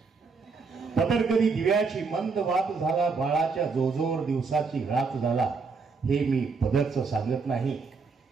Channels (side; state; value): left; quieter; 4.8 dB